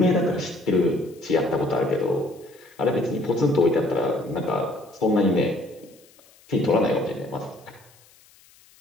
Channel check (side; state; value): left; noise; hiss, 28 dB below the sound